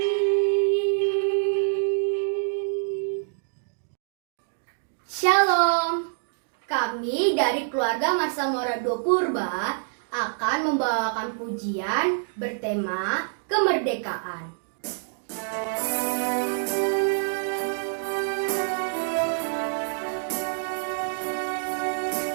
Shalom, kami dari keluarga Marsa Morado Purba akan membawakan pujian bertema kemerdekaan.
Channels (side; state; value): left; silent; digital silence